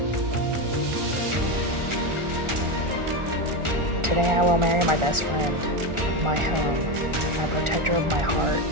Today I will marry my best friend, my home, my protector of my heart,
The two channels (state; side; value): late; left; 1.4 ms